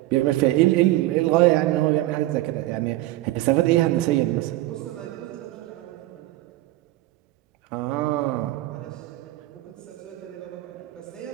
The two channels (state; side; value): quieter; left; 16.8 dB